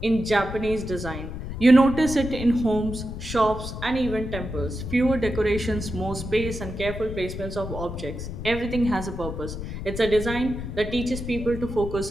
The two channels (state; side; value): noise; left; rumble, 7 dB below the sound